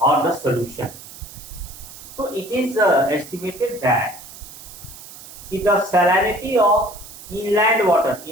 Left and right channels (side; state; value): right; noise; hiss, 16 dB below the sound